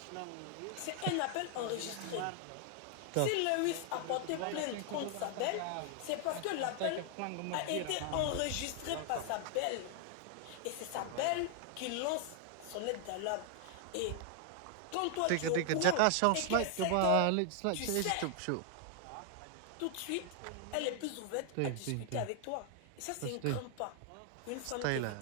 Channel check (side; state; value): both; different; correlation 0.00